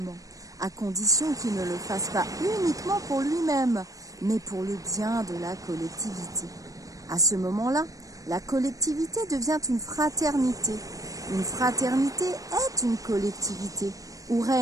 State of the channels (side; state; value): left; late; 0.16 ms